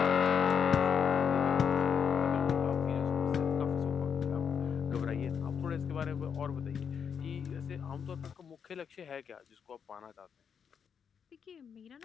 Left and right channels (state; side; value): quieter; right; 7.1 dB